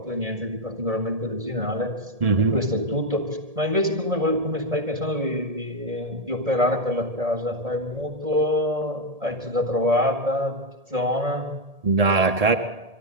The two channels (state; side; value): late; left; 1.7 ms